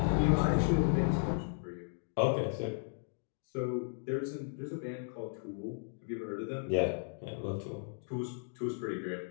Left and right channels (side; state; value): right; silent; digital silence